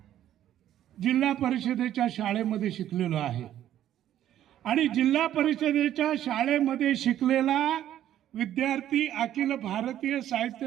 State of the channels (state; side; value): quieter; left; 11.7 dB